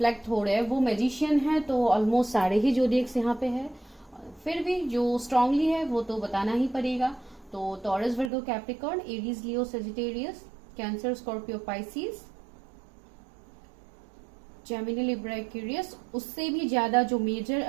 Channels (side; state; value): left; drops out; at 8.3 s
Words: हो रहे हैं वो मैजिशियन है, तो ऑलमोस्ट सारे ही जोडिएक्स यहाँ पे है, फिर भी जो स्ट्रांगली है वो तो बताना ही पड़ेगा। तो Taurus, Virgo, Capricorn, Aries, Leo, Sagittarius, Cancer, Scorpio, Pisces, Gemini, Libra, Aquarius, उससे भी ज्यादा जो मेजर